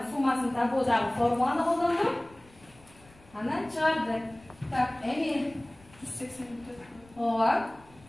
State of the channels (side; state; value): left; noise; rumble, 26 dB below the sound